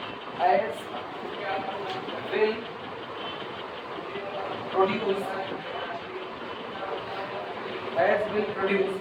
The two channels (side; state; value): both; identical; correlation 1.00